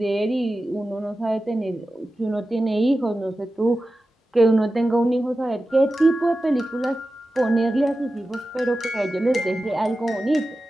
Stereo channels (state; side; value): normal; both; correlation 0.94